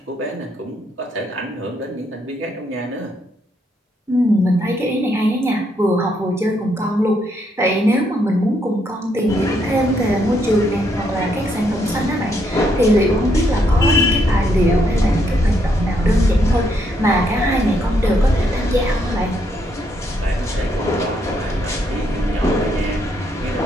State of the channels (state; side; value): normal; both; correlation 0.75